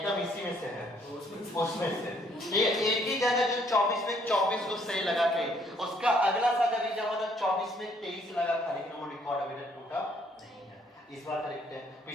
इसी में से है, उसमें से ये एक ही जगह जो 24 में 24 को सही लगा के, उसका अगला सा जब एग्जाम होता 24 में 23 लगा था, लेकिन वो रिकॉर्ड अभी तक टूटा नहीं है। इस बार देखते हैं,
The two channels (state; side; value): normal; both; correlation 0.66